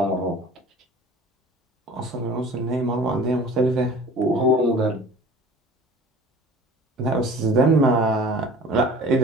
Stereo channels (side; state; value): both; normal; correlation 0.44